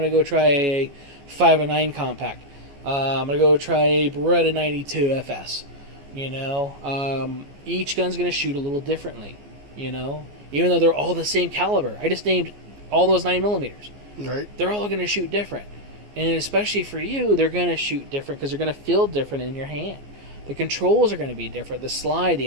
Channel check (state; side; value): late; left; 14 ms